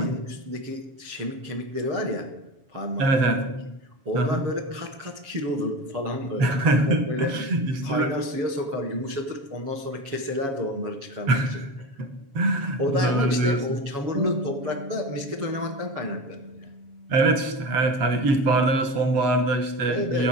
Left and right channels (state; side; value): late; left; 7.2 ms